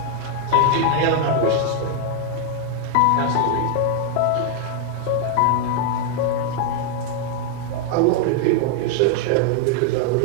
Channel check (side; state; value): both; different; correlation 0.00